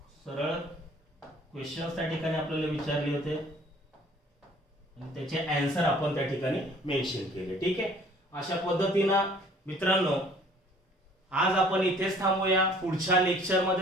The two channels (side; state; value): both; normal; correlation 0.54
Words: सरळ क्वेश्चन्स त्या ठिकाणी आपल्याला विचारले होते आणि त्याचे आन्सर आपण त्या ठिकाणी मेन्शन केले. ठीक आहे, अशा पद्धतीनं मित्रांनो आज आपण इथेच थांबूया. पुढच्या लेक्चर